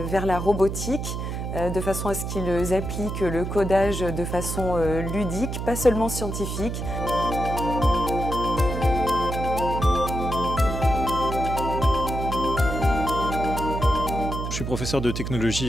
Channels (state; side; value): noise; right; hum, 4 dB below the sound